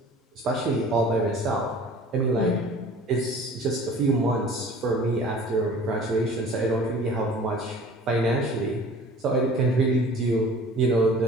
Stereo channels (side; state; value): both; normal; correlation 0.46